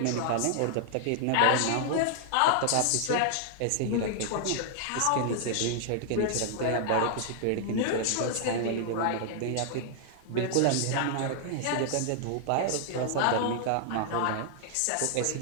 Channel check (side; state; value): both; different; correlation -0.01